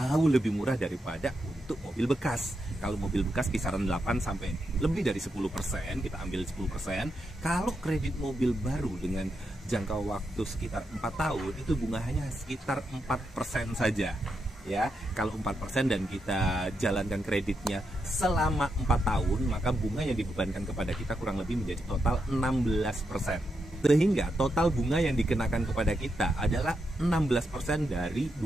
lebih murah daripada untuk mobil bekas. Kalau mobil bekas kisaran 8 sampai lebih dari 10%, kita ambil 10%. Kalau kredit mobil baru dengan jangka waktu sekitar 4 tahun, itu bunga hanya sekitar 4% saja. Ya, kalau 4% dan kita jalankan kreditnya selama 4 tahun, maka bunga yang dibebankan kepada kita kurang lebih menjadi total 16%. Sehingga total bunga yang dikenakan kepada kita adalah 16% dari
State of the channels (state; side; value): normal; both; correlation 0.84